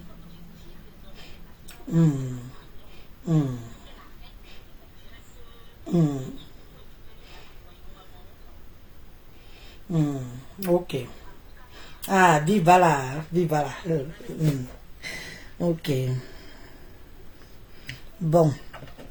Ok. Ah, viva là. Ok. Bon.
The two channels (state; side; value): identical; both; correlation 1.00